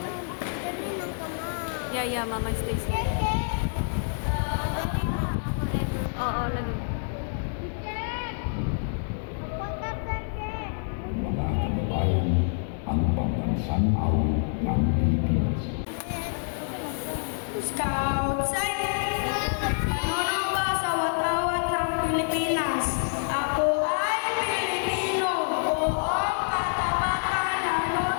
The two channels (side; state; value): right; silent; digital silence